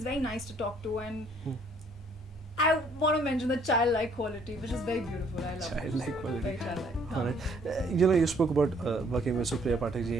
very nice to talk to, and I want to mention the childlike quality, which is very beautiful. I love Childlike it. quality. Very childlike. Alright. You know, you spoke about working with Supriya Pathak ji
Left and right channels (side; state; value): both; normal; correlation 0.63